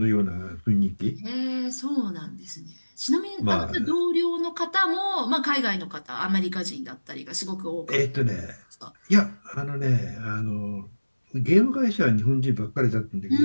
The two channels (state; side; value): inverted; both; correlation -1.00